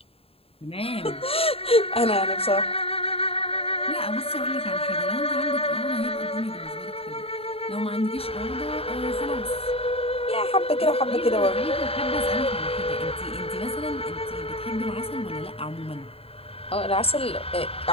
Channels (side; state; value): right; late; 0.28 ms